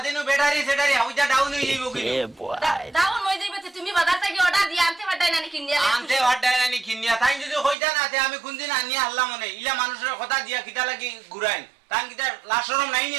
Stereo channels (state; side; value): drops out; left; at 7.8 s